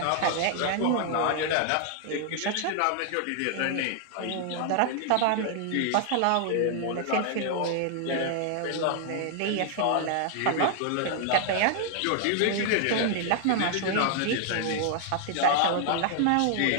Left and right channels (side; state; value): both; different; correlation 0.00